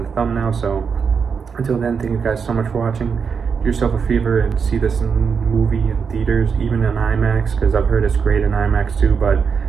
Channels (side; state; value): left; quieter; 6.1 dB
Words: the thumbnail. So until then, thank you guys so much for watching. Do yourself a favor and see this movie in theaters, even in IMAX, because I've heard it's great in IMAX too, but